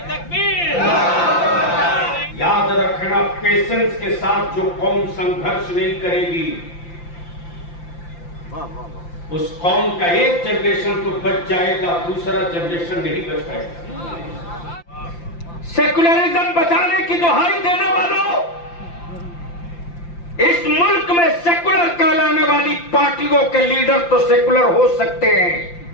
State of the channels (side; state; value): right; late; 5.8 ms